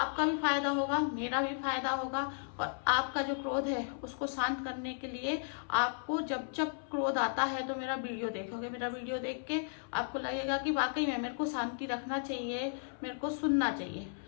भी फायदा होगा, मेरा भी फायदा होगा। और आपका जो क्रोध है उसको शांत करने के लिए आपको जब जब क्रोध आता है तो मेरा वीडियो देखोगे। मेरा वीडियो देख के आपको लगेगा कि वाकई में मेरे को शांति रखना चाहिए, मेरे को सुनना चाहिए।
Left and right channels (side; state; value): right; silent; 55 dB below the other